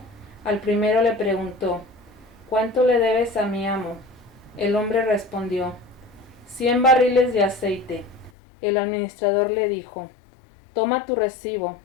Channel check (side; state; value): right; drops out; at 8.3 s